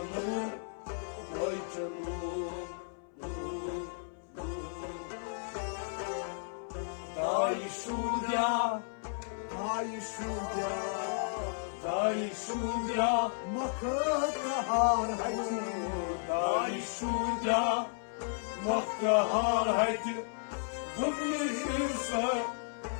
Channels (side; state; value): right; silent; 55 dB below the other